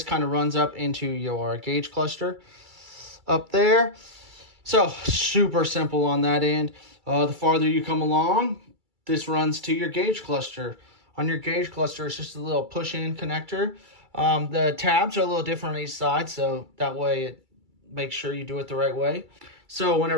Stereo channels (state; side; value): late; left; 2.3 ms